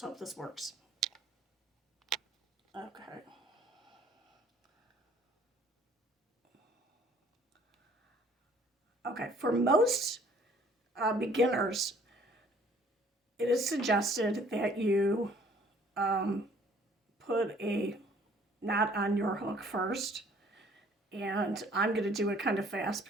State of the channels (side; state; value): both; normal; correlation 0.57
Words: hope this works. Okay. Okay, for most beginners, it is suggested that you put a knot on your hook first. And I'm going to do it kind of fast